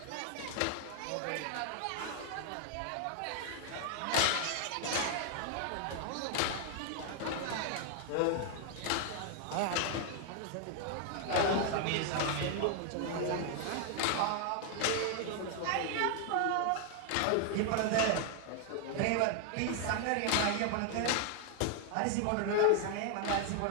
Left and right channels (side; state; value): both; different; correlation 0.00